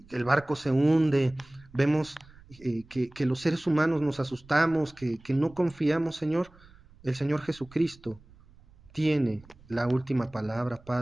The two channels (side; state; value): right; noise; rumble, 25 dB below the sound